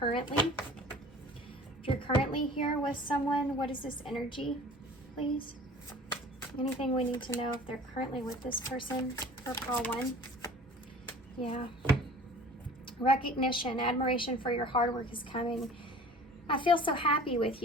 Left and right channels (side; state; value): both; normal; correlation 0.45